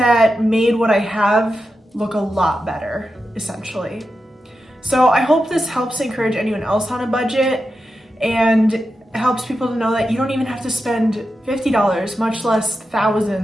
made what I have look a lot better, essentially. So I hope this helps encourage anyone else on a budget and helps people to know that you don't even have to spend $50, much less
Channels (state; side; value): normal; both; correlation 0.90